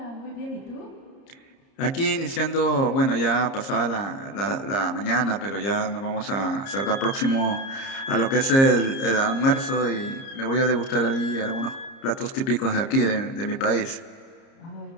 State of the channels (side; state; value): right; late; 30 ms